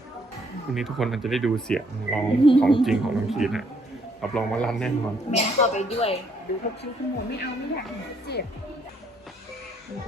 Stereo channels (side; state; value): both; normal; correlation 0.68